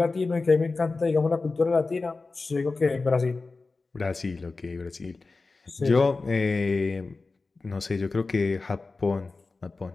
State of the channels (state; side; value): quieter; right; 3.8 dB